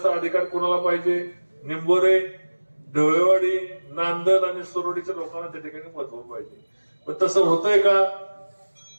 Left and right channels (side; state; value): both; inverted; correlation -1.00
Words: अधिकार कोणाला पाहिजे? निंबोरे, ढवळेवाडी, नांदल आणि सुरोडीच्या लोकांना त्या ठिकाणी महत्व पाहिजे. पण तसं होतंय का?